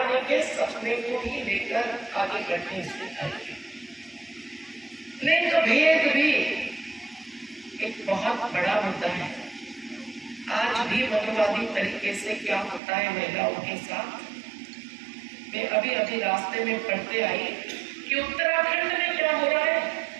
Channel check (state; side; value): drops out; left; at 12.8 s